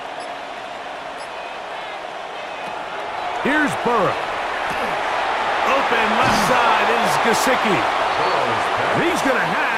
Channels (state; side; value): identical; both; correlation 1.00